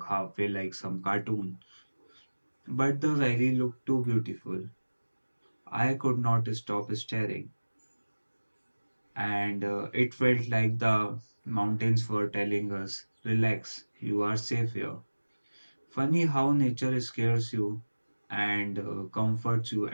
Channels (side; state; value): both; inverted; correlation -1.00